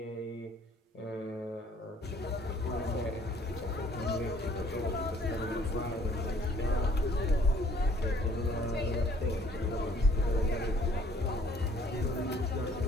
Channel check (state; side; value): normal; both; correlation 0.59